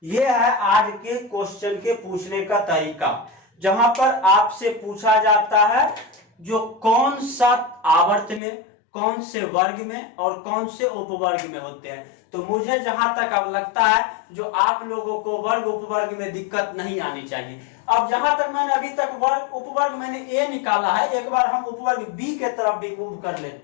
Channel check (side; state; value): right; drops out; at 8.4 s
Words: यह है आज के क्वेश्चन के पूछने का तरीका, जहां पर आपसे पूछा जाता है जो कौन सा आवर्त में, कौन से वर्ग में और कौन से उपवर्ग में होते हैं। तो मुझे जहां तक अब लगता है जो आप लोगों को वर्ग उपवर्ग में दिक्कत नहीं आनी चाहिए। अब जहां तक मैंने अभी तक वर्ग उपवर्ग मैंने A निकाला है, एक बार हम उपवर्ग B के तरफ भी मूव कर